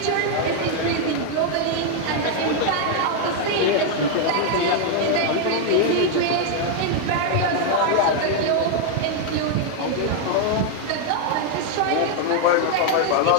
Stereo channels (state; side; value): different; both; correlation 0.00